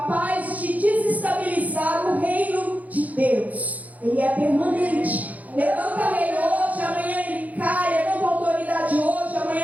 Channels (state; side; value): late; left; 0.076 ms